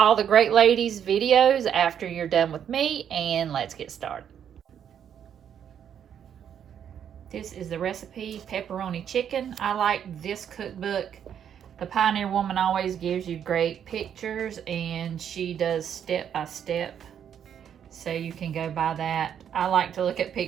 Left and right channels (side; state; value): left; quieter; 8.8 dB